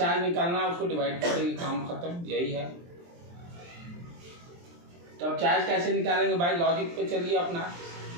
निकालना है, उसको डिवाइड कर देंगे, काम खत्म, यही है। तो अब चार्ज कैसे निकालेंगे भाई, लॉजिक पे चलिए अपना।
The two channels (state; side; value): late; left; 23 ms